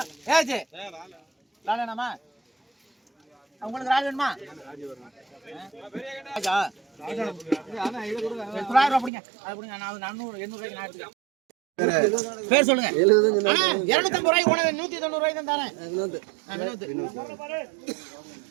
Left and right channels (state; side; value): drops out; left; at 9.1 s